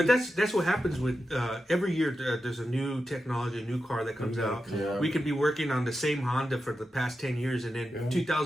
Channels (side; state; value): both; normal; correlation 0.90